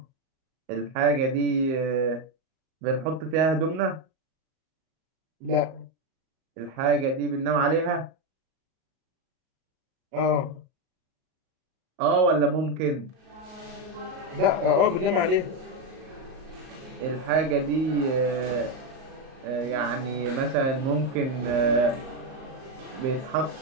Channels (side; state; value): left; late; 38 ms